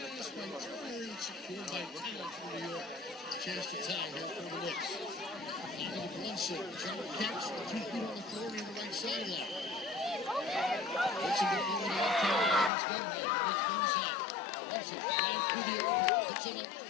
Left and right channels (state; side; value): drops out; right; at 12.7 s